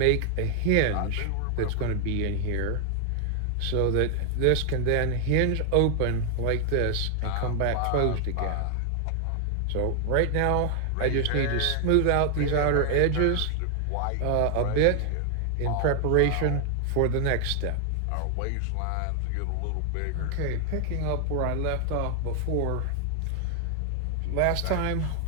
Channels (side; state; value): both; different; correlation 0.00